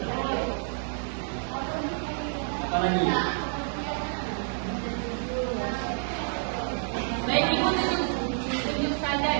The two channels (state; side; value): silent; left; 59 dB below the other